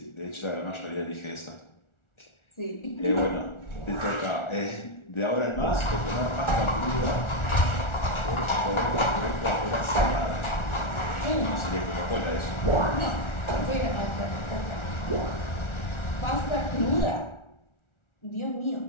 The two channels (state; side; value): late; right; 1.4 ms